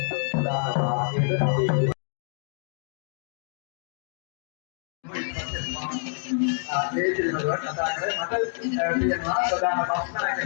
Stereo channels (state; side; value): silent; right; 58 dB below the other